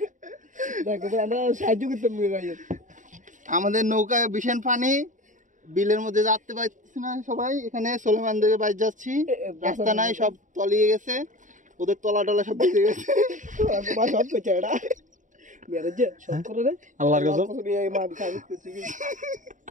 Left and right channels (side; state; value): left; late; 0.37 ms